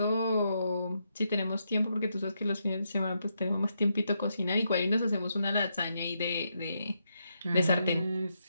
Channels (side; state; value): both; inverted; correlation -0.81